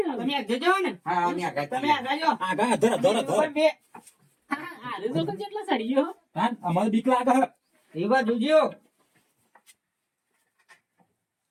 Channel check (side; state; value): both; identical; correlation 1.00